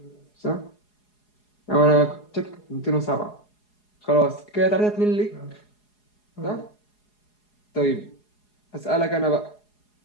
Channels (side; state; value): right; late; 4.8 ms